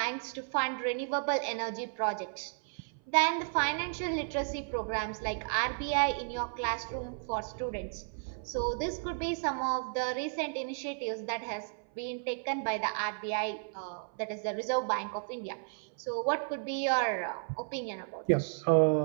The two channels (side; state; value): left; silent; 55 dB below the other